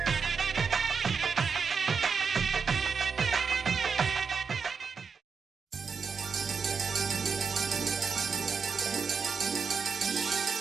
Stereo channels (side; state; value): left; quieter; 5.7 dB